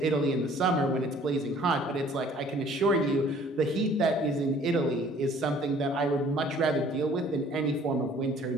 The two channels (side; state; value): both; normal; correlation 0.55